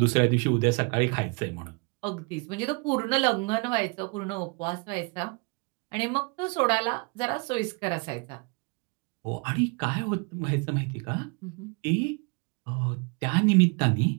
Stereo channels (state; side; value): quieter; left; 32.4 dB